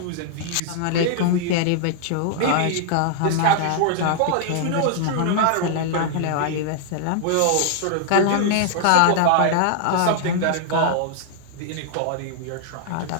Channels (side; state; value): both; different; correlation 0.00